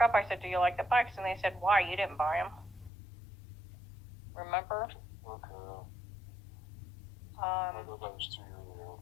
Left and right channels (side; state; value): right; drops out; at 2.9 s